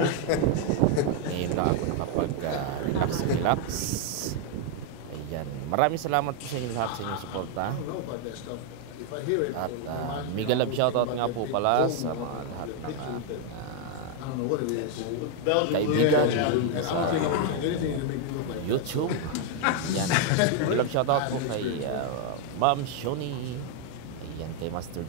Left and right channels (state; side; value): different; both; correlation 0.00